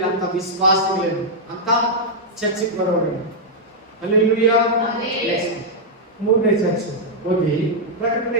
ಅಂತ ವಿಶ್ವಾಸಗಳೇನು ಅಂತ ಚರ್ಚಿಗೆ ಬರೋರು. ಹಲ್ಲೆಲೂಯಾ. ಮೂರನೇ ಚರ್ಚ್ ಓದಿ, ಪ್ರಕಟಣೆ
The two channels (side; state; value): both; normal; correlation -0.05